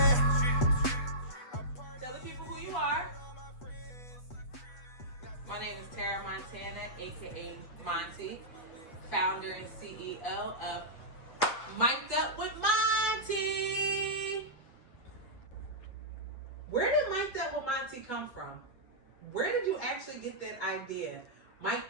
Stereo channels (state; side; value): late; right; 8.2 ms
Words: Tell the people who you are. My name is Tara Montana, aka Monty, founder and CEO of Mic'd Up with Monty. Where did Mic'd Up with Monty come from? Where did you actually get that idea?